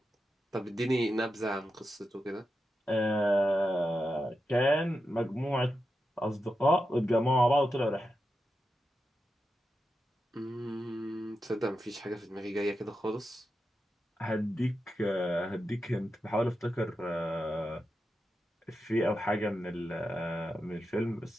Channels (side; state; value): both; normal; correlation 0.89